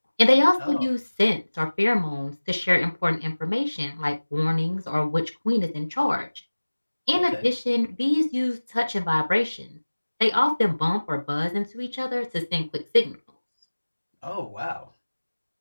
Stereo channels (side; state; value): both; inverted; correlation -1.00